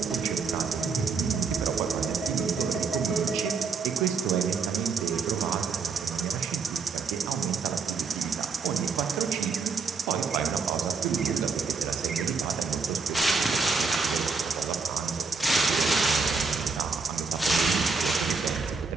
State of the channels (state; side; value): quieter; left; 4.7 dB